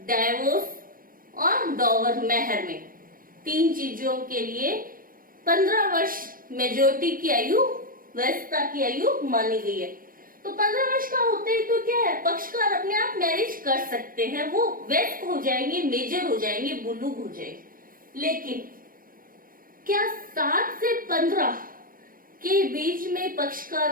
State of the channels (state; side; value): late; left; 0.41 ms